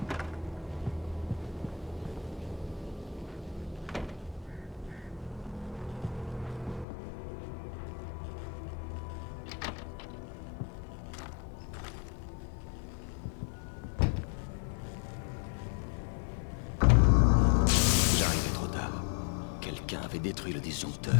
Détruit le disjoncteur.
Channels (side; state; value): right; drops out; at 6.9 s